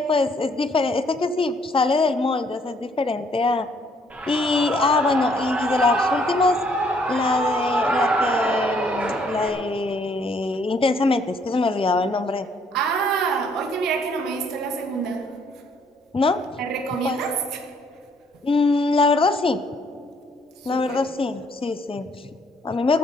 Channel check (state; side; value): normal; both; correlation 0.66